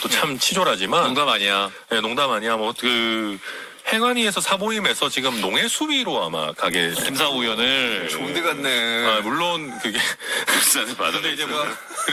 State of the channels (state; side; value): identical; both; correlation 1.00